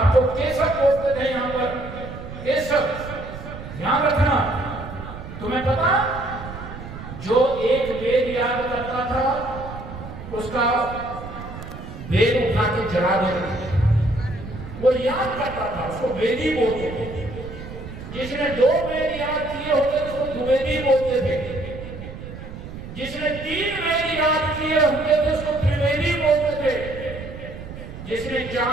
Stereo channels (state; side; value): noise; right; rumble, 12 dB below the sound